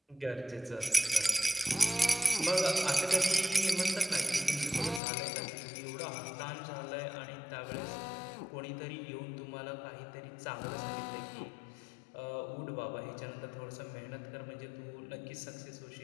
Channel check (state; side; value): drops out; right; at 5.0 s